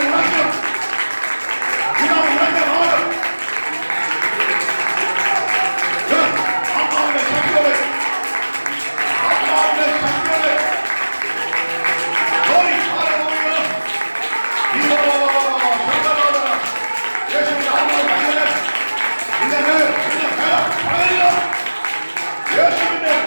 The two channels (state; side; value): inverted; both; correlation -1.00